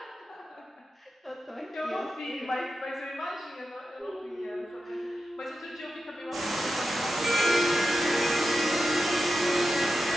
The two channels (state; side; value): normal; both; correlation 0.91